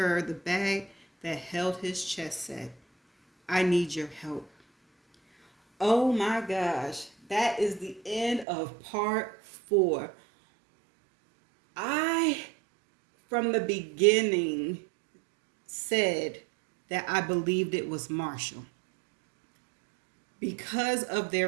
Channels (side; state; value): left; drops out; at 8.5 s